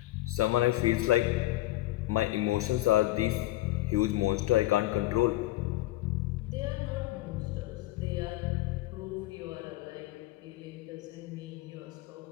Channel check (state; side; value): quieter; right; 17.0 dB